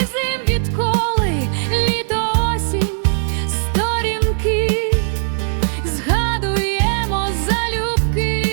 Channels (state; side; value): silent; left; digital silence